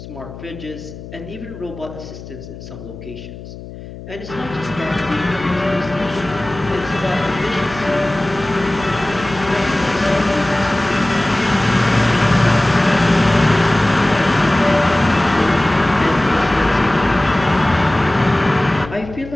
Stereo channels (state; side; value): noise; left; hum, 14 dB below the sound